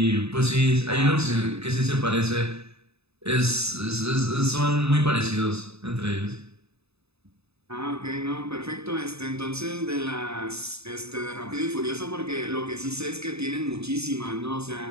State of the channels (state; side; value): late; left; 0.79 ms